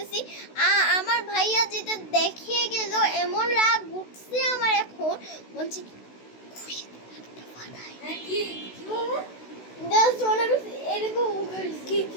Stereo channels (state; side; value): late; right; 16 ms